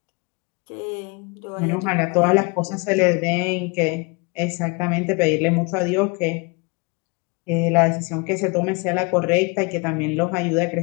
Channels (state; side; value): quieter; right; 29.7 dB